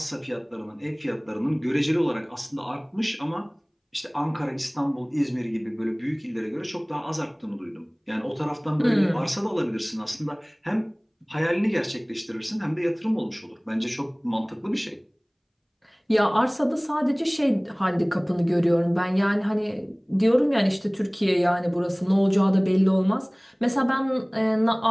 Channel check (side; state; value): both; identical; correlation 1.00